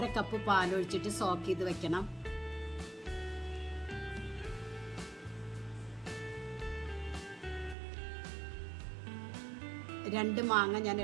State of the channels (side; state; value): left; drops out; at 7.8 s